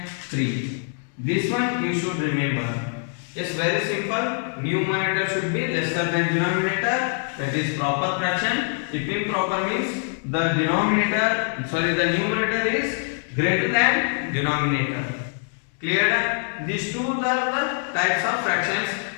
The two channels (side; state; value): right; silent; 58 dB below the other